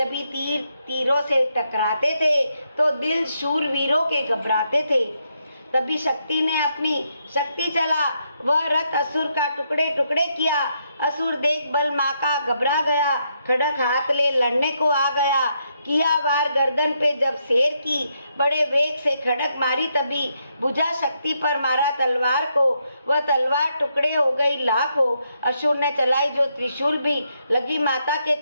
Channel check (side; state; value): both; inverted; correlation -0.78